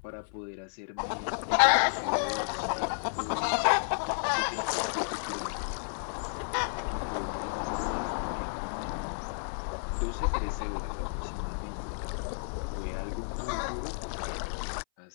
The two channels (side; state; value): right; silent; 57 dB below the other